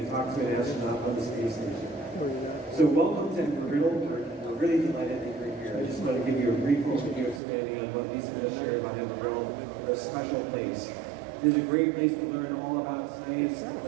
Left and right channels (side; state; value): left; drops out; at 7.4 s